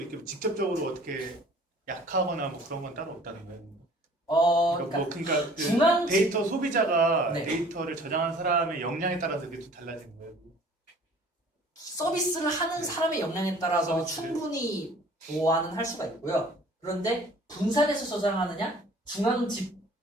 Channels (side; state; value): both; normal; correlation 0.51